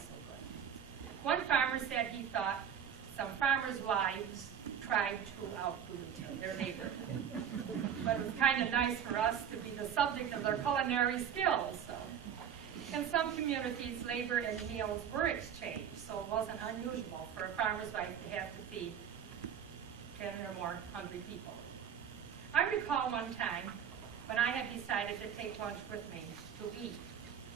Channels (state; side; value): quieter; left; 8.4 dB